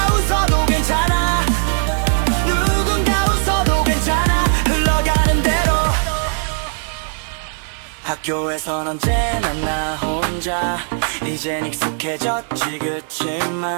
웃어도 괜찮아 누군가 웃어도 괜찮아 흘러가는 대로 학교에선 언제나 나 혼자 이젠 익숙해졌지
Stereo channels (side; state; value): left; silent; 57 dB below the other